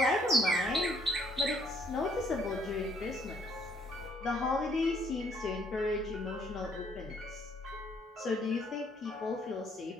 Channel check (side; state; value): both; normal; correlation 0.66